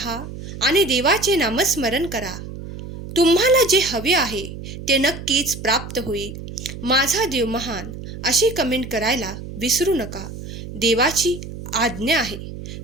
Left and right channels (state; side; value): noise; right; hum, 11 dB below the sound